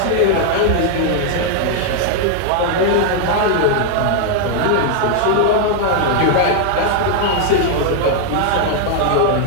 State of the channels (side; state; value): both; different; correlation 0.00